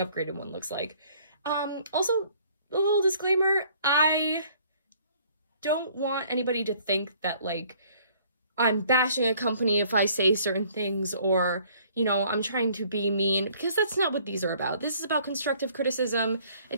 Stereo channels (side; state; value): both; inverted; correlation -0.58